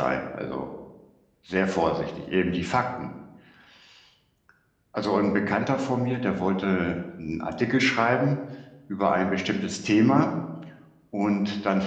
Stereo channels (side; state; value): both; identical; correlation 1.00